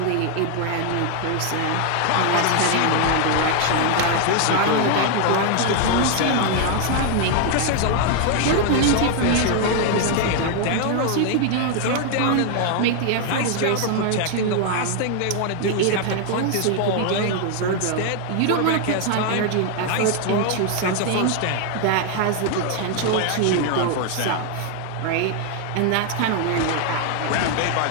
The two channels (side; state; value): both; different; correlation 0.00